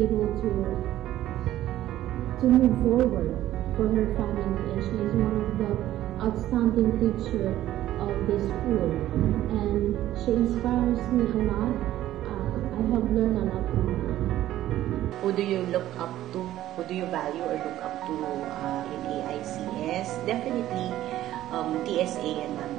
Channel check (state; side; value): quieter; left; 13.7 dB